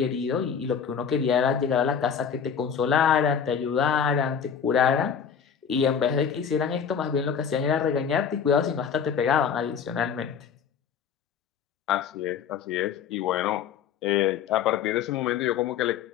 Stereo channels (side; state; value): right; quieter; 7.4 dB